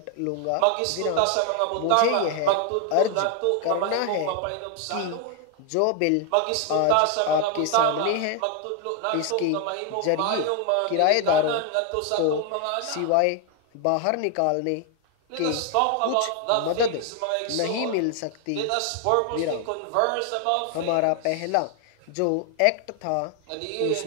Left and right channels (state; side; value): different; both; correlation 0.00